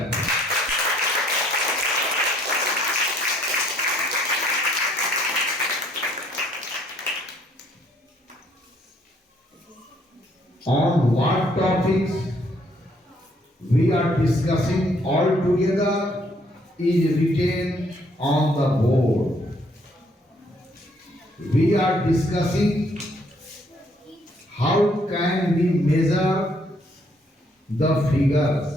On what topics we are discussing all together is written on the board. We are discussing how can we measure the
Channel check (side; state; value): both; normal; correlation 0.66